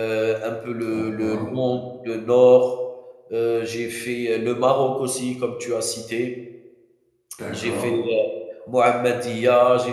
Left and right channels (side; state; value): both; identical; correlation 1.00